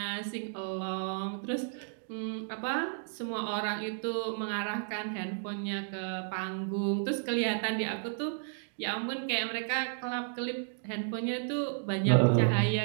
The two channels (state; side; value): silent; left; digital silence